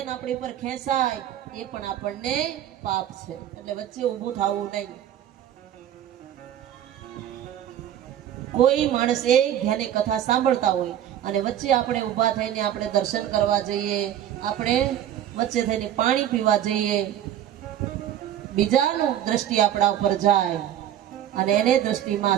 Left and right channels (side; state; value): left; quieter; 11.1 dB